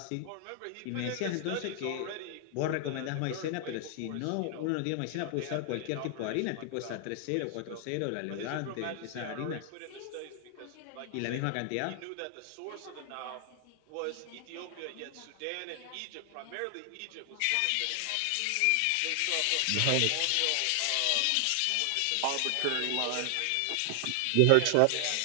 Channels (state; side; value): different; both; correlation 0.00